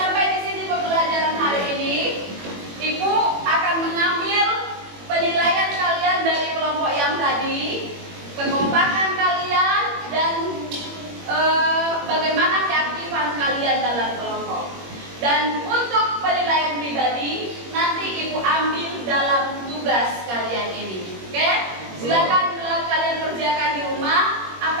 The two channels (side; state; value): left; late; 21 ms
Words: Dan untuk penilaian pribadi nanti Ibu ambil dalam tugas kalian ini. Oke? Silakan bila kalian kerjakan di rumah, apa